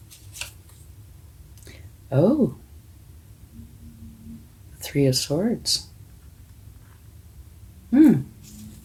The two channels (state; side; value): identical; both; correlation 1.00